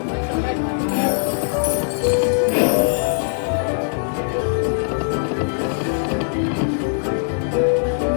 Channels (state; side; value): silent; right; digital silence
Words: put some red ones in there.